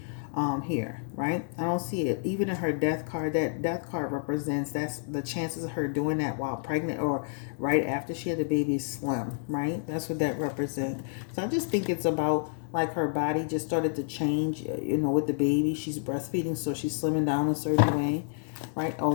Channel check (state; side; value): silent; right; digital silence